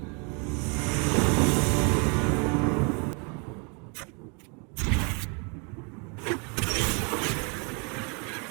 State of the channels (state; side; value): quieter; left; 34.4 dB